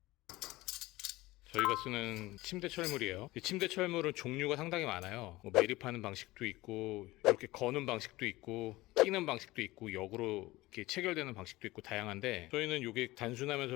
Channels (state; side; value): quieter; right; 19.3 dB